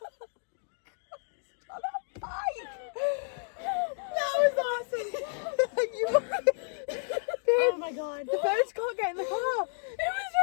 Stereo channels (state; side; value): silent; right; digital silence